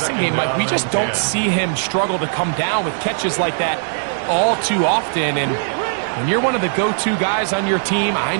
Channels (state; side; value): silent; left; digital silence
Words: game. Like, we just don't see him struggle to come down with catches like that all too often. And when you're one of the go-to guys on your team, I